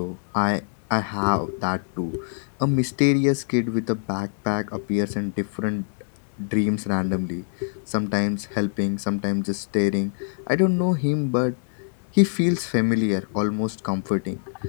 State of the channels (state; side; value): silent; right; 62 dB below the other